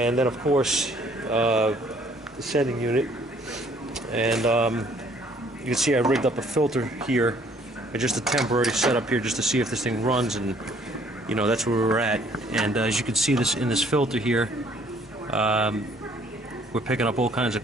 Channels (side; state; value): both; normal; correlation 0.61